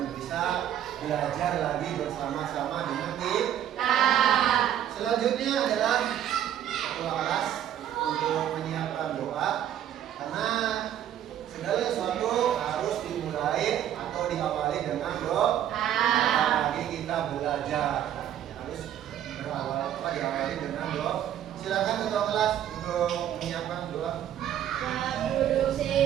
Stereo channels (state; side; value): quieter; left; 10.7 dB